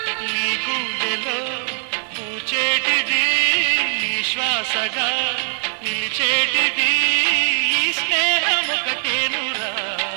నీ గుండెలో పూచేటిది నీ శ్వాసగా నిలిచేటిది ఈ స్నేహం ఒకటేనురా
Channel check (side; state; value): left; silent; digital silence